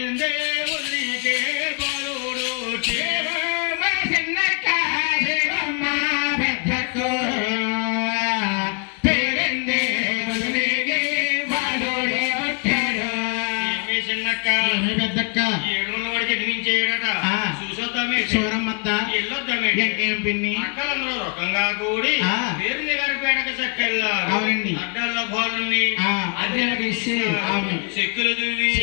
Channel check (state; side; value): quieter; right; 37.5 dB